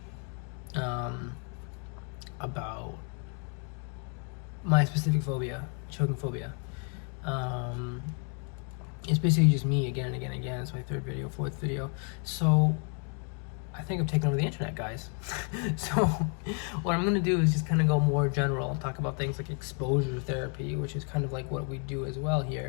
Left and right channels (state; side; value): quieter; right; 39.7 dB